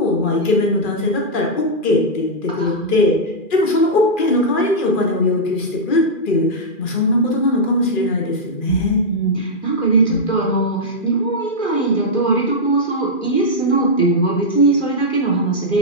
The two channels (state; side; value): late; right; 2.4 ms